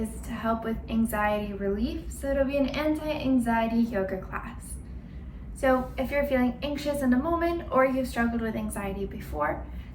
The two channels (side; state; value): both; identical; correlation 1.00